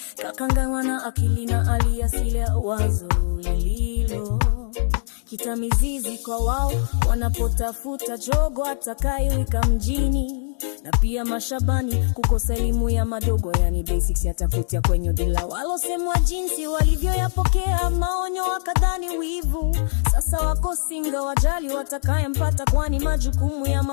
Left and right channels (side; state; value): right; silent; digital silence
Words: kakanganywa na akili na aliasili ya wazo lililo kita mizizi kwa wao wanapotafuta jogo atakayewika mjini. Na pia mashabani kukosa elimu ya madogo, yani basics yatafutia kwenye dila. Walosemwa jinsi walivyoyapokea maonyo wakadhani wivu, sasa wako singa wajali watakayempata, kwani majukumu ya